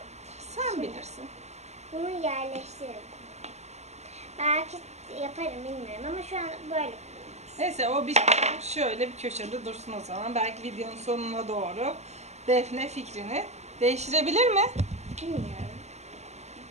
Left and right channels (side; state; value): left; late; 0.33 ms